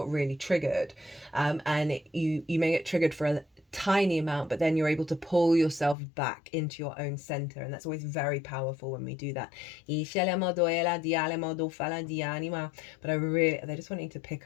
really triggered, and you may get triggered for a tiny amount, but then you're able to pull yourself back into your own center, and that's always very powerful when we do that. But they're just wanting to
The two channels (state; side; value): drops out; right; at 6.0 s